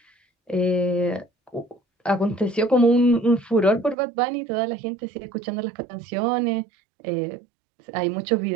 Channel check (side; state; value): left; drops out; at 4.0 s